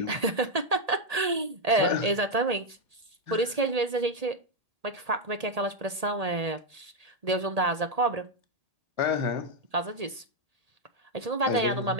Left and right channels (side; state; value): left; late; 1.8 ms